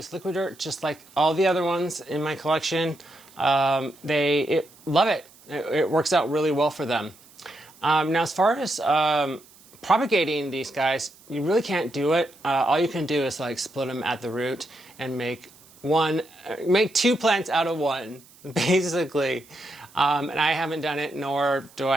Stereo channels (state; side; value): noise; right; hiss, 26 dB below the sound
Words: liquid dirt just like all the other ones in my collection. They love it. It works out really well for them. Now, as far as propagating these guys, you really can't do it. All you can do is like split them at the root and make two plants out of one, basically. And I haven't done it, nor do